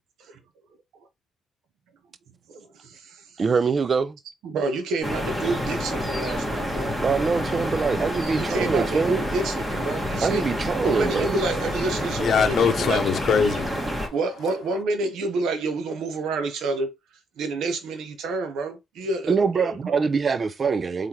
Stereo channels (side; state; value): both; normal; correlation 0.76